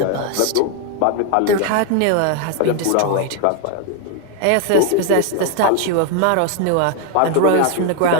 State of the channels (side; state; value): both; different; correlation 0.00